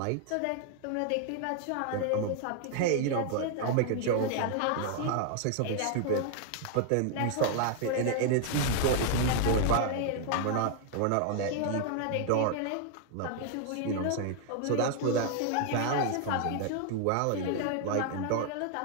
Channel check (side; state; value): both; different; correlation 0.00